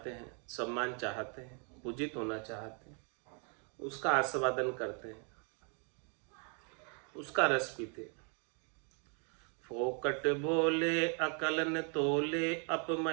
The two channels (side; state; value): left; quieter; 38.5 dB